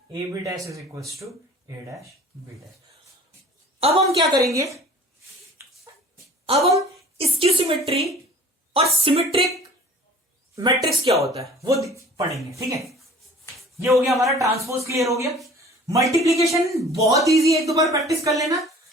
AB dash is equals to A dash B dash. अब हम क्या करेंगे, अब हम स्क्यू सिमेट्री और सिमेट्रिक मैट्रिक्स क्या होता है वो पढ़ेंगे, ठीक है। ये हो गया हमारा ट्रांसपोज, क्लियर हो गया। मल्टीप्लीकेशन बहुत इजी है, एक दो बार प्रैक्टिस कर लेना।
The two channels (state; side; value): normal; both; correlation 0.47